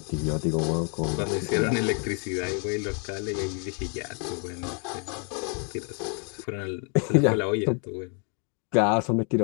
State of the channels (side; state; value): right; quieter; 39.2 dB